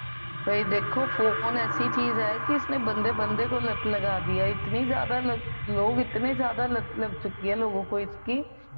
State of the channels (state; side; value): inverted; both; correlation -1.00